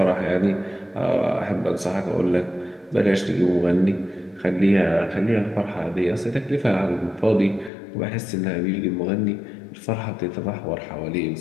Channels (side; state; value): right; drops out; at 7.7 s